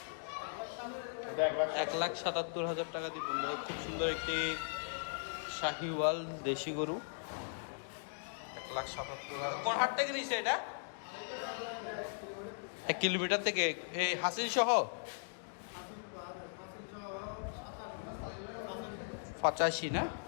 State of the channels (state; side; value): silent; right; digital silence